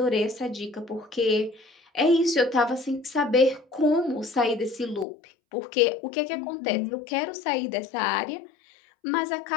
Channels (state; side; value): drops out; right; at 5.1 s